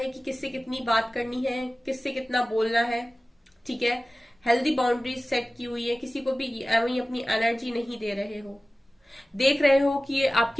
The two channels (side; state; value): both; normal; correlation 0.96